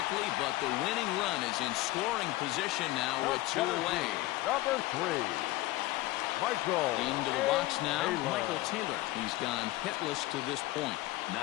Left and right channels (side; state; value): right; quieter; 18.3 dB